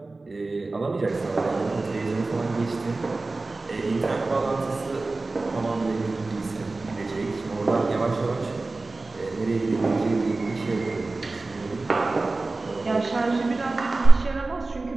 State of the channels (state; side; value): quieter; left; 3.4 dB